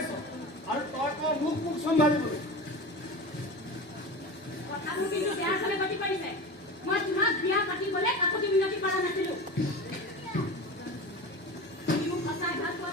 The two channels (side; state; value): both; normal; correlation 0.30